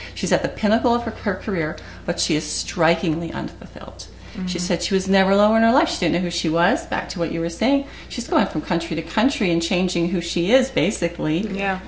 she's at the pinnacle of her career, but she is strikingly unfulfilled. She said she was never lower in her life. She didn't know who she was. Back to what you were saying. She's going from country to country and changing who she is, basically,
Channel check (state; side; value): identical; both; correlation 1.00